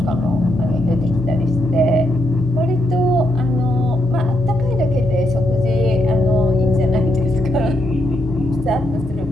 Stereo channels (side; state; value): both; normal; correlation 0.79